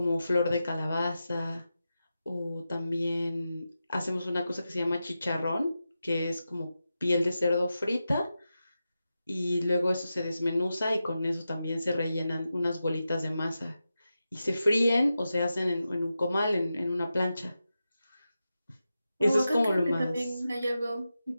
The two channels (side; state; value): both; inverted; correlation -0.91